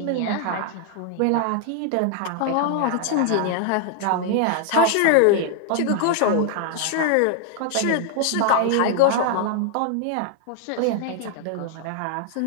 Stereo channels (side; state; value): both; different; correlation 0.00